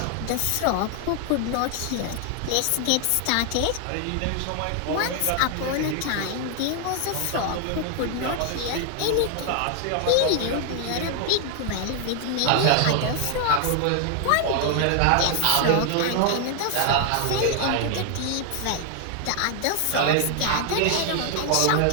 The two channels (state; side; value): different; both; correlation 0.00